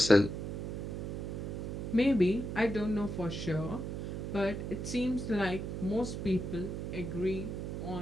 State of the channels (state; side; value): noise; right; hum, 4 dB below the sound